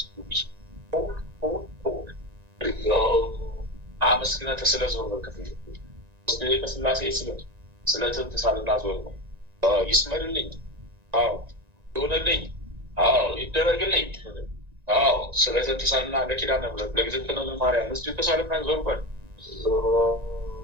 አመስግነህ ስለ ዞር በክፍል ከስላሴ ስለ ትንትሳልና ዞር ነው ይስመርልኝ። አዎ ይሆንልኝ። አዎ ይደረግልኝ። አዎ ስለ ትንትሳልና ለኪዳነ ምሕረት ለእግዝእትነ ለማርያም እስኪ ተሳልና ዞር በል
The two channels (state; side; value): late; left; 1.9 ms